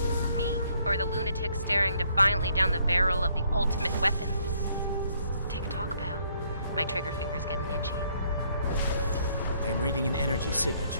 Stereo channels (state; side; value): inverted; both; correlation -0.67